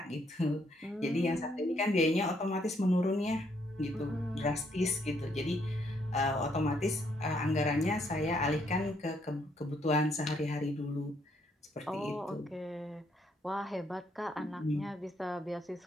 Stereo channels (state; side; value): normal; both; correlation 0.71